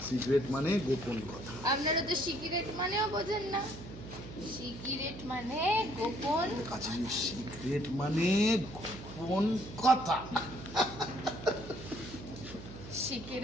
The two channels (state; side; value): noise; right; hum, 13 dB below the sound